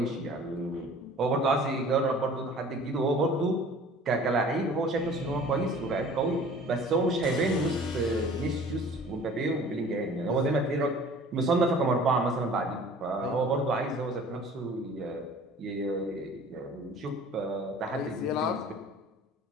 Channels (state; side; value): normal; both; correlation 0.47